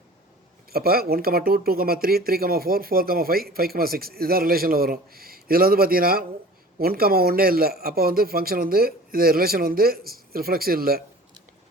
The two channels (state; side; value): normal; both; correlation 0.43